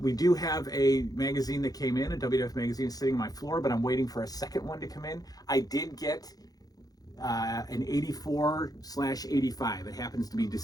We do have a magazine that came in, a WWF magazine sitting on my floor, but I'm waiting for a second one to come in. I did get an 84/85. It happens to be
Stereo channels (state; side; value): late; right; 0.18 ms